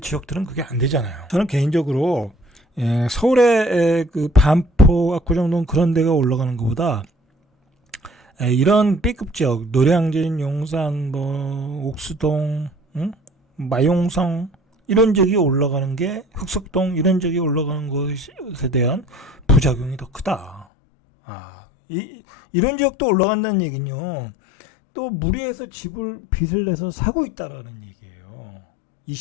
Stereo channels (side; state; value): right; drops out; at 20.7 s